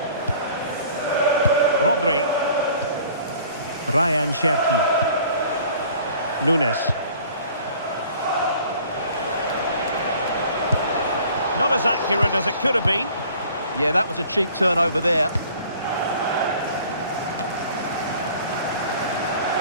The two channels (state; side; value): inverted; both; correlation -0.51